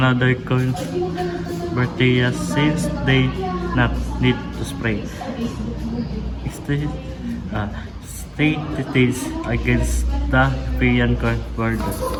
corn bacteria since they not need to spray. State details against the European corn border.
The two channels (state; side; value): identical; both; correlation 1.00